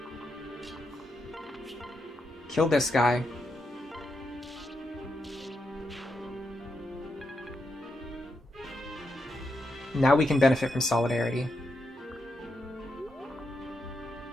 Kill this guy. Now we can benefit from Solidarity.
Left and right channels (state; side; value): normal; both; correlation 0.83